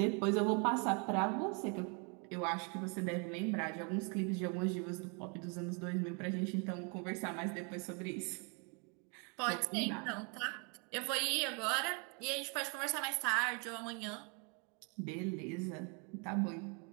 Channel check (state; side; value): quieter; left; 35.5 dB